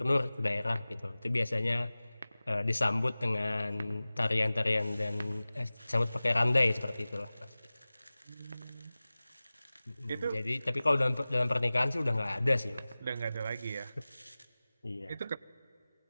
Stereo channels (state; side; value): inverted; both; correlation -0.98